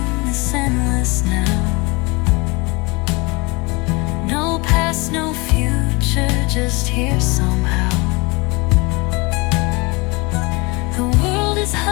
this endless now. No past, no future, just here somehow. The world is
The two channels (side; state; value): right; quieter; 26.6 dB